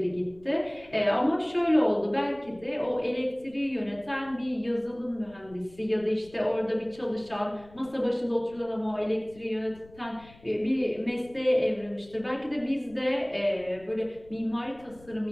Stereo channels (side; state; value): left; noise; rumble, 24 dB below the sound